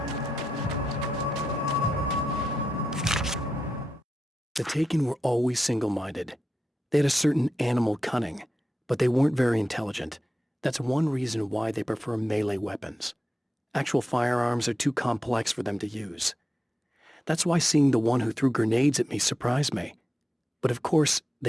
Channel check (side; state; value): both; normal; correlation 0.89